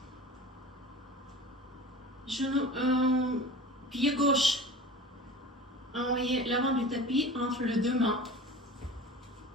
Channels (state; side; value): normal; both; correlation 0.37